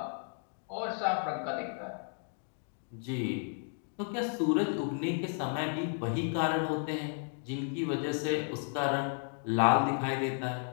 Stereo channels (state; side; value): silent; right; 55 dB below the other